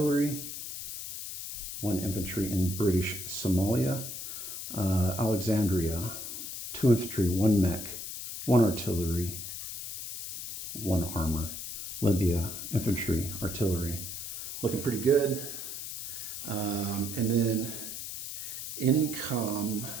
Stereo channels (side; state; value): left; noise; hiss, 7 dB below the sound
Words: 1 infantry in British Somalia. Alexandria, 2 infantry, 1 mech, 1 artillery, 1 armor. Libya, infantry, artillery. Looking pretty good. And then income,